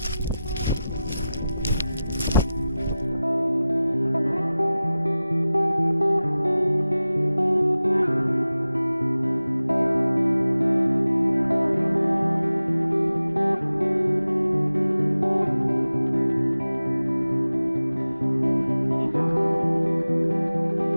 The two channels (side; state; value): both; inverted; correlation -0.95